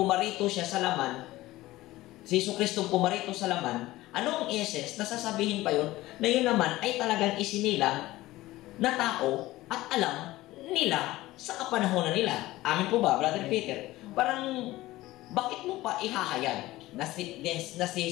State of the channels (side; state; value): right; quieter; 17.5 dB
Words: siya sa laman, si Jesucristo pumarito sa laman, anong essence na sasabihin pa yun, na yun naman ay talagang isinilang na tao at alam nila sa kapanahonan nila. Amin po ba, Brother Peter? Parang, bakit mo pa ihahayag na si